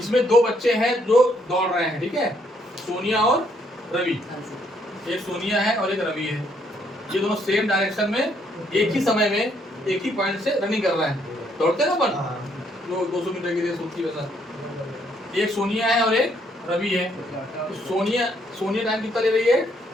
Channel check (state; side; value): normal; both; correlation 0.70